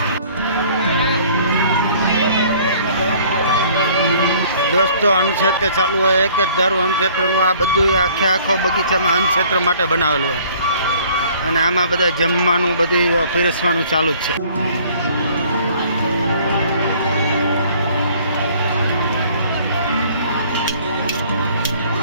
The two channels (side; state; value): both; inverted; correlation -0.55